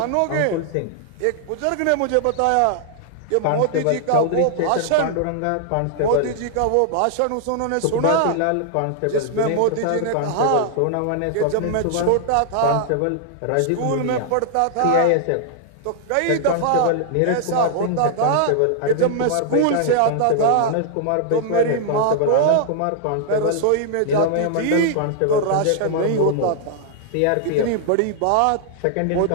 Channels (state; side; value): different; both; correlation -0.01